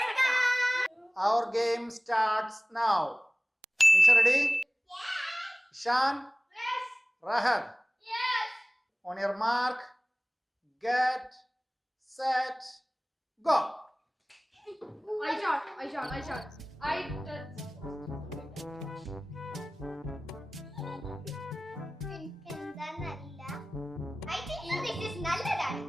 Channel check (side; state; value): both; normal; correlation 0.98